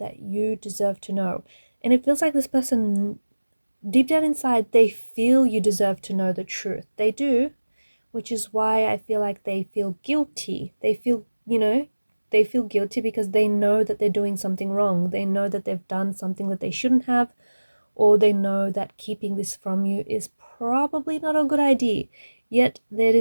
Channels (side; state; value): both; inverted; correlation -1.00